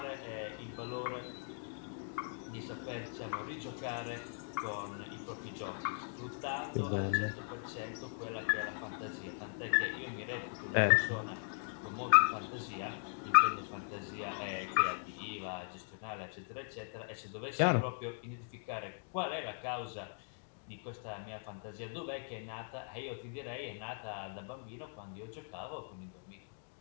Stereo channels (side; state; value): right; silent; digital silence